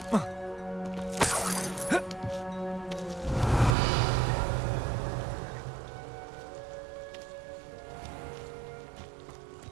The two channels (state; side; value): drops out; left; at 3.8 s